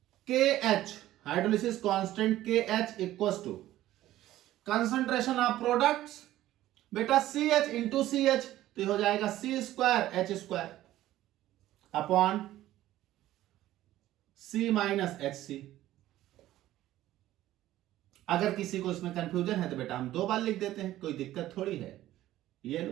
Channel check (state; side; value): quieter; left; 14.5 dB